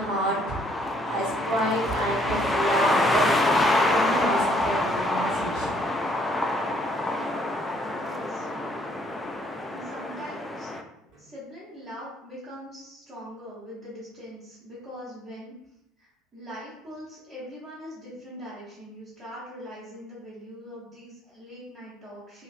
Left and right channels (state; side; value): normal; both; correlation 0.66